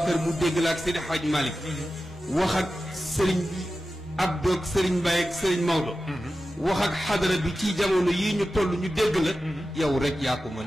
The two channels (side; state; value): both; normal; correlation 0.93